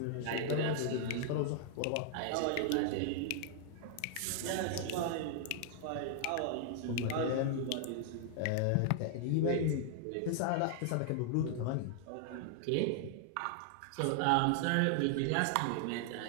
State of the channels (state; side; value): different; both; correlation 0.00